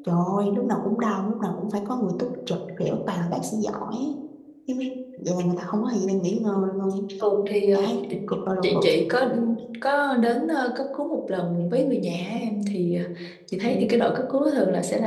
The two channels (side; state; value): both; identical; correlation 1.00